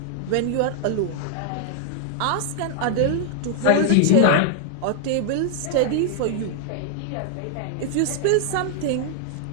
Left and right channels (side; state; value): both; different; correlation 0.00